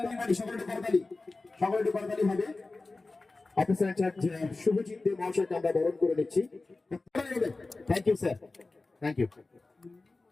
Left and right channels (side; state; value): right; quieter; 3.4 dB